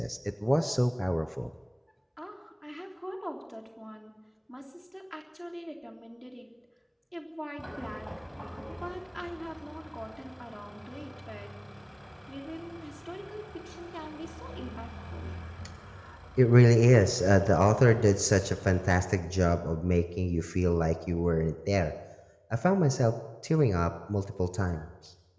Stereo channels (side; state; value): both; identical; correlation 1.00